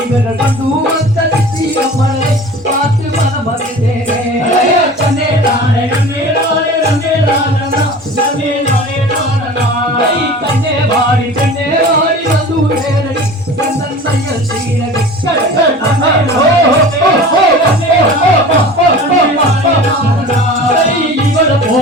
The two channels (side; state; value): both; normal; correlation 0.39